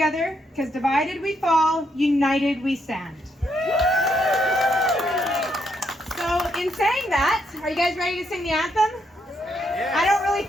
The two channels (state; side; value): normal; both; correlation 0.77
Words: because divided we fall, united we stand. So in saying that, are you guys ready to sing the anthem? Yes. I don't really